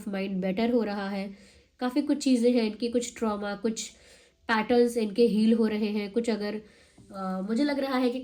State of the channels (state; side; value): identical; both; correlation 1.00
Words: माइंड बेटर हो रहा है। काफ़ी कुछ चीज़ें हैं इनकी, कुछ ट्रॉमा, कुछ पैटर्न्स इनके हील हो रहे हैं, कुछ अगर मुझे लग रहा है कि